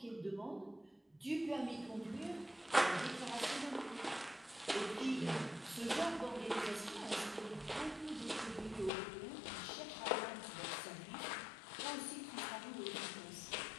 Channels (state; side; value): drops out; right; at 8.9 s